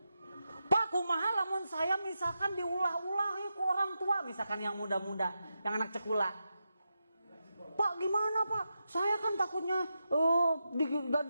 Pak, kumaha lamun saya misalkan diulah-ulah ku orang tua, misalkan yang muda-muda, yang anak cekula. Pak, Pak gimana Pak? Saya kan takutnya gak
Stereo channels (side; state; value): both; inverted; correlation -0.88